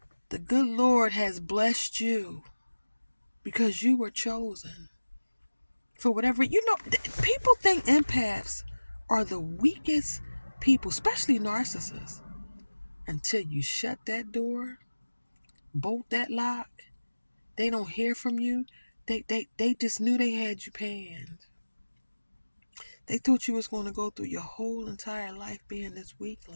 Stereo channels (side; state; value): both; inverted; correlation -1.00